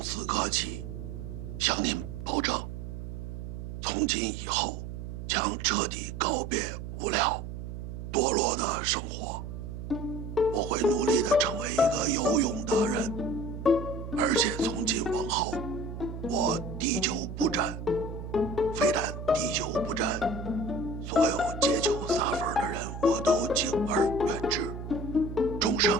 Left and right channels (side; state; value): right; noise; hum, 8 dB below the sound